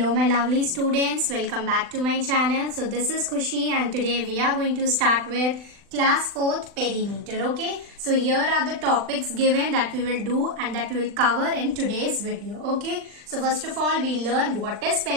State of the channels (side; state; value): left; late; 39 ms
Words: my lovely students, welcome back to my channel. So this is Khushi and today we are going to start with class 4th perimeter. Okay, so here are the topics given that we will do and that we will cover in today's video. Okay, so first of all we learn what is